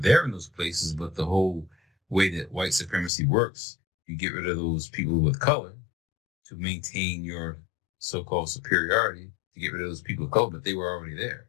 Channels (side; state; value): right; drops out; at 3.1 s